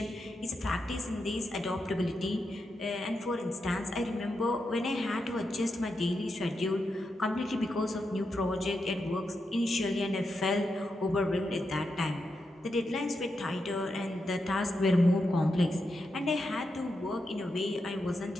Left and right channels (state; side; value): normal; both; correlation 0.86